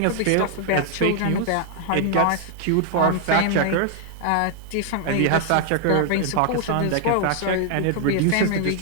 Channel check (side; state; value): both; different; correlation 0.00